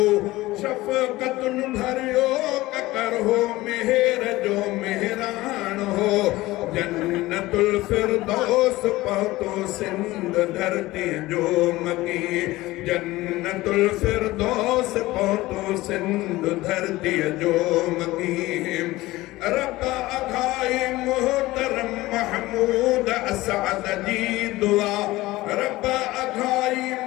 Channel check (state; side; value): quieter; right; 18.5 dB